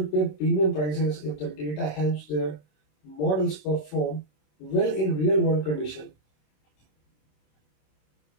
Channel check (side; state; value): right; late; 27 ms